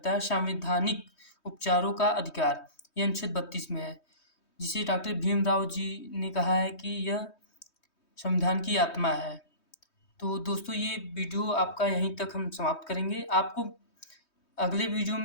है, संवैधानिक उपचारों का अधिकार, यह अनुच्छेद 32 में है, जिसे डॉक्टर भीमराव जी ने कहा है कि यह संविधान की आत्मा है। तो दोस्तों ये वीडियो आपका यहीं तक हम समाप्त करेंगे। आपको अगले वीडियो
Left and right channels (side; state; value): right; late; 3.2 ms